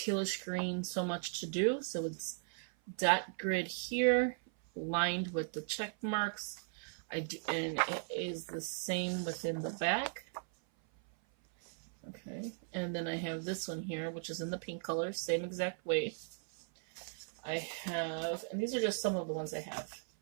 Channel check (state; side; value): silent; left; 53 dB below the other